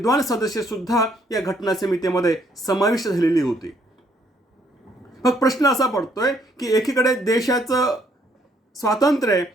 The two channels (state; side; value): normal; both; correlation 0.68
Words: सदस्य सुद्धा या घटना समितीमध्ये समाविष्ट झालेली होती. मग प्रश्न असा पडतोय की एकीकडे देशाचं स्वातंत्र्य